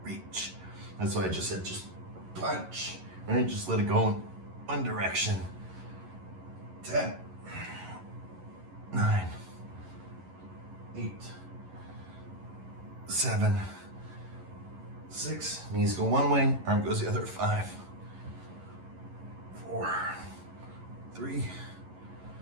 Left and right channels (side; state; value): left; late; 11 ms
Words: reach. That's why I just said just punch, right? Just let it go in one direction. 10, 9, 8, 7, 6. Knees go one way, arm goes the other. 5, 4, 3,